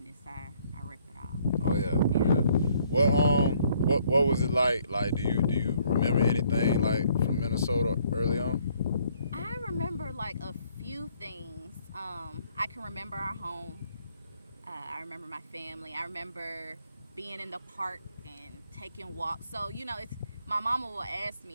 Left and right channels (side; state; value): both; inverted; correlation -0.65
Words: I rip it all. Oh yeah. What was it like? Like, do you remember anything like from Minnesota early on? I remember like a few things. I can remember our home. I remember my family. I remember being in the park and taking walks. So, you know, it's my mama will ask